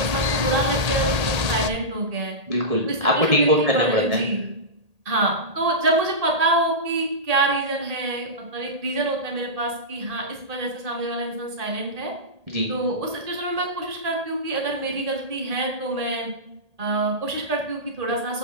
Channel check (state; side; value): late; left; 1.8 ms